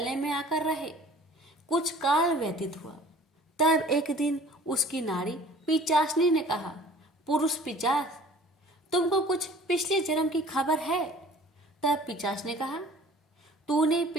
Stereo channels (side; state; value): both; normal; correlation 0.48